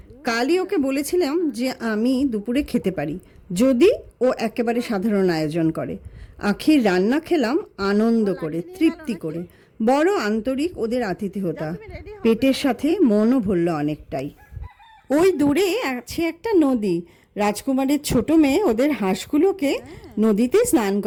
কালই ওকে বলেছিলাম যে আমি দুপুরে খেতে পারি যদি ও একেবারে সাধারণ আয়োজন করে। আখির রান্না খেলাম আনন্দ করে, তৃপ্তি করে। বড় আন্তরিক ওদের আতিথেয়তা, পেটের সাথে মনও ভরল অনেকটাই। ওই দূরে আছে একটা নদী। রাজকুমারের ছোট মেয়ে ওদের হাঁসগুলোকে নদীতে স্নান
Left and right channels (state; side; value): identical; both; correlation 1.00